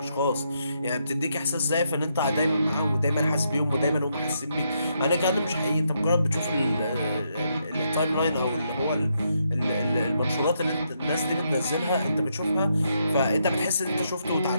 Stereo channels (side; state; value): both; inverted; correlation -0.78